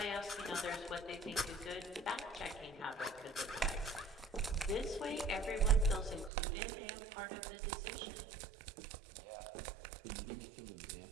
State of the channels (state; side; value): drops out; left; at 6.3 s